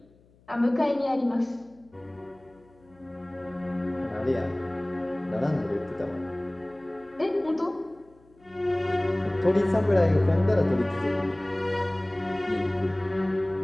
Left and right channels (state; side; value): noise; left; hum, 30 dB below the sound